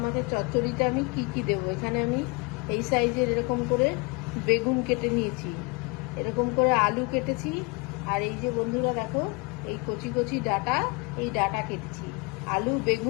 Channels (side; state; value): right; quieter; 29.1 dB